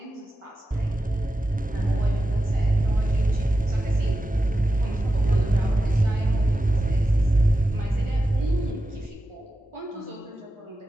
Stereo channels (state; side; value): normal; both; correlation 0.92